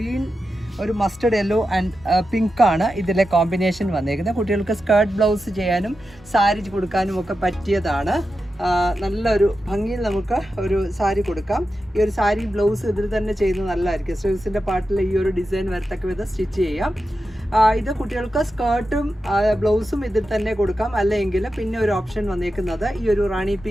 ഒരു മസ്റ്റർഡ് യെല്ലോ ആൻഡ് പിങ്ക് ആണ് ഇതിലെ കോമ്പിനേഷൻ വന്നേക്കുന്നത്. കുട്ടികൾക്ക് സ്കേർട്ട് ബ്ലൗസ് ചെയ്യാനും സാരി കൊടുക്കാനും ഒക്കെ പറ്റിയതാണ്. നല്ലൊരു ഭംഗിയിൽ നമുക്ക് ഒരു സാരി കൊടുക്കാം. ഈ ഒരു സാരി ബ്ലൗസ് ഇതിൽ തന്നെ ചെയ്യുന്നത് നല്ലതായിരിക്കും. സ്ലീവ്സിൻ്റെ പാർട്ടിൽ ഈ ഒരു ഡിസൈൻ വരത്തക്ക വിധം സ്റ്റിച്ച് ചെയ്യാം. ഇത് കുട്ടികൾക്ക് സ്കേർട്ടും ബ്ലൗസും ഇതിൽ തന്നെ കൊടുക്കാം. അല്ലെങ്കിൽ പിന്നെ ഒരു ഓപ്ഷൻ വന്നേക്കുന്നത് ഈ ഒരു റാണി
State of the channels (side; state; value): both; normal; correlation 0.90